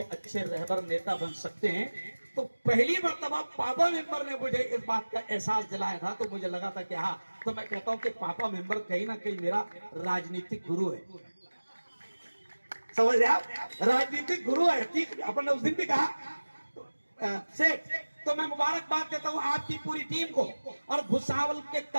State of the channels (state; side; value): inverted; both; correlation -1.00